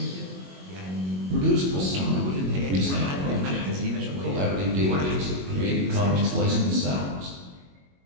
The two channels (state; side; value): late; left; 21 ms